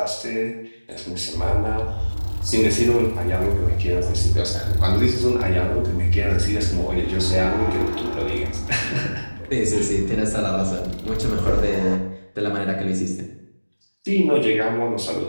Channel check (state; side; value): inverted; both; correlation -1.00